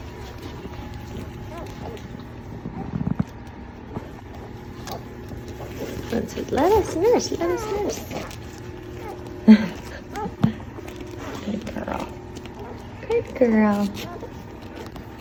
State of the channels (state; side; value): identical; both; correlation 1.00